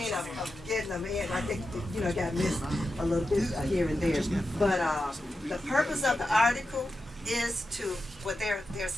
of getting them in. I think, got missed a little bit here and there. But the purpose of the article is there are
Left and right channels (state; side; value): normal; both; correlation 0.90